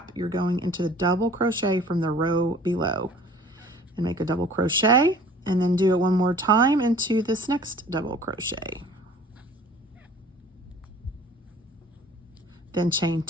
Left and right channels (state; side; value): normal; both; correlation 0.49